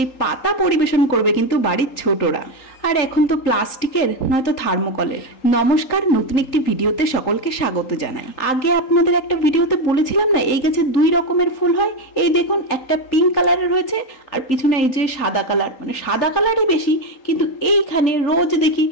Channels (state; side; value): late; right; 3.8 ms